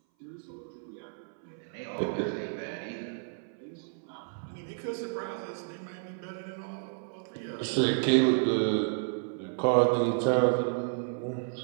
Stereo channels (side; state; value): left; silent; 57 dB below the other